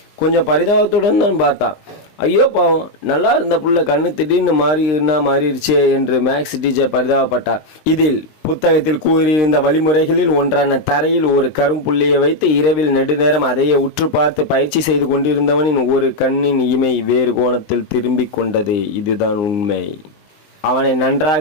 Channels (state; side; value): late; right; 20 ms